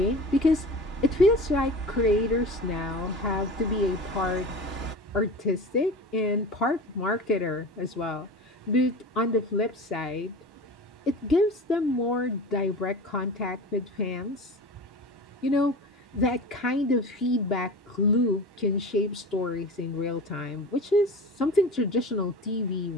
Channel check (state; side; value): normal; both; correlation 0.34